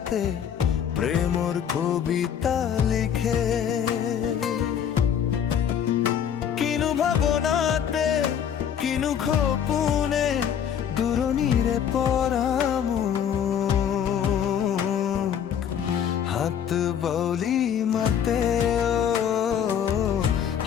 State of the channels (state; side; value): quieter; right; 8.7 dB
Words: প্রেমর কবিতা লিখে কিনু ভাবনাতে কিনু খোপুনে দূরনীরে পরামু হাত বৌলি মতে